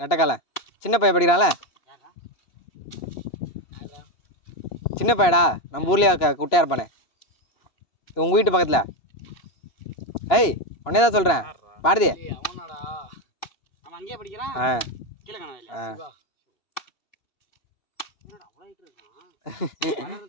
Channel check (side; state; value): right; late; 2.9 ms